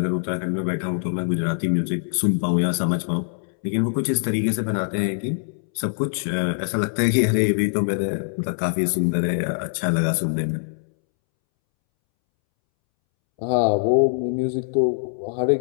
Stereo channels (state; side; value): silent; right; 63 dB below the other